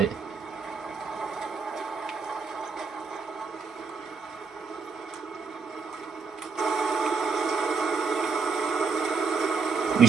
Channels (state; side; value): quieter; left; 5.1 dB